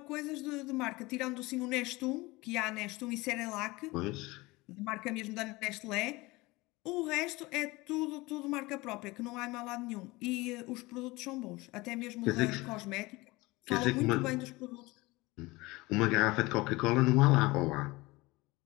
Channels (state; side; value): quieter; right; 22.0 dB